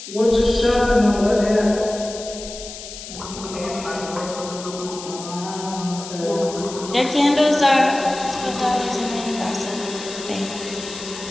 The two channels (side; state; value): left; noise; hiss, 12 dB below the sound